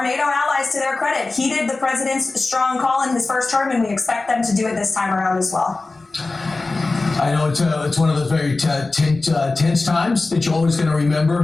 NATO allies, to their credit, heeded the president's strong call in his first term, and we expect them to do it this time around as well. I know it's one of the very tense times that you're always going to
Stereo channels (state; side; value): quieter; right; 3.4 dB